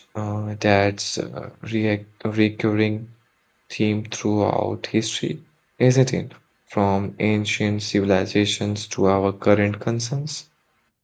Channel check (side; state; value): both; identical; correlation 1.00